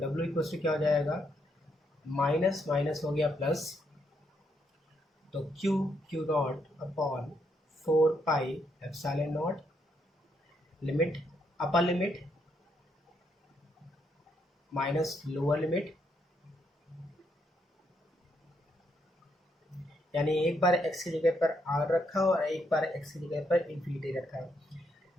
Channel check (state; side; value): normal; both; correlation 0.77